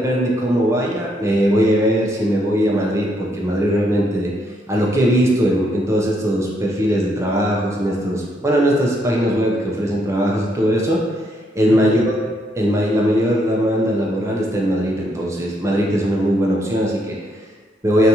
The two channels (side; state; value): both; normal; correlation 0.74